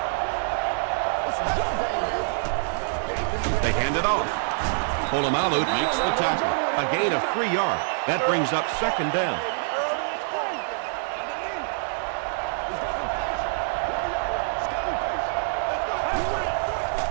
They hand it off. Polamalu makes the tackle. A gain of 3 yards. That brings up second down.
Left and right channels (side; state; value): left; silent; digital silence